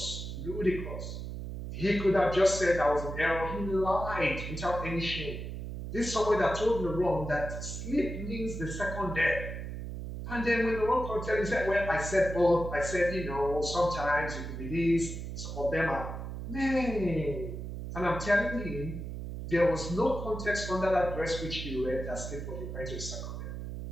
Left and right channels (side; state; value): right; noise; hum, 7 dB below the sound